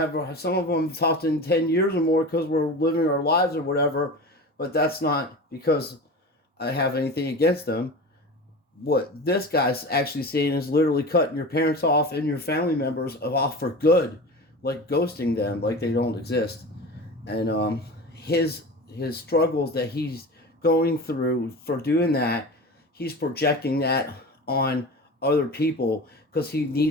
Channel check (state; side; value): normal; both; correlation 0.31